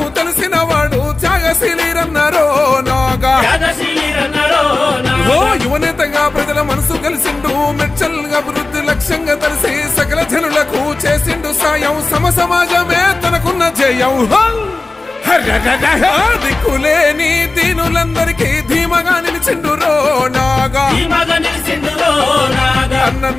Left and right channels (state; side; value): quieter; right; 3.3 dB